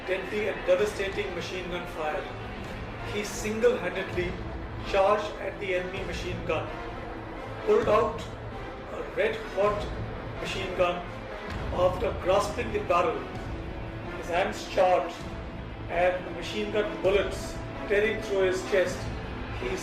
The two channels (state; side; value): identical; both; correlation 1.00